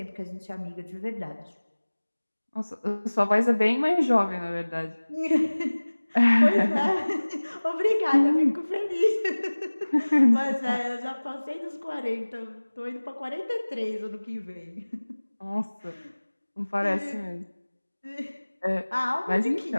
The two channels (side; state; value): both; inverted; correlation -1.00